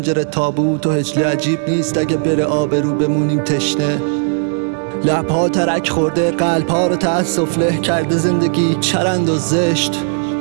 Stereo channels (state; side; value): silent; left; 69 dB below the other